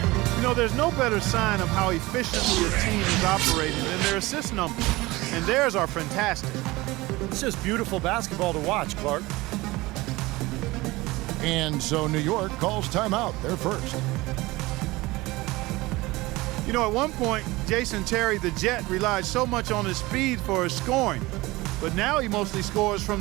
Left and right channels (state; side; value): quieter; left; 20.7 dB